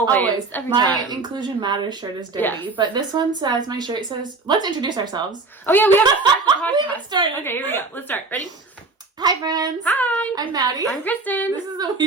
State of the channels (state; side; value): quieter; left; 3.8 dB